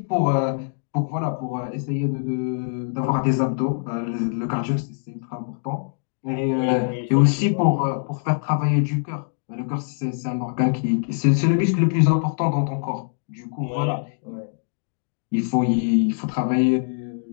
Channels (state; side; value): silent; right; digital silence